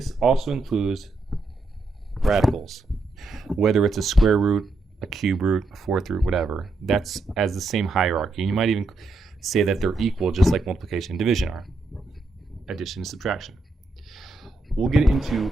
also includes radicals. Whether it's a square root, a cube root, a fourth root, whatever, that's as the same hierarchy. And you might even say that they're equal, just like multiplication and division are. Addition and subtraction. We'll get into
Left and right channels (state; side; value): quieter; left; 3.2 dB